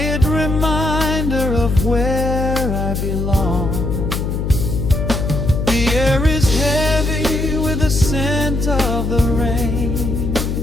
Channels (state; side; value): noise; left; hum, 2 dB below the sound